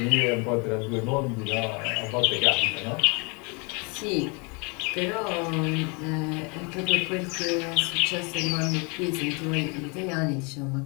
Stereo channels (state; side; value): quieter; right; 31.7 dB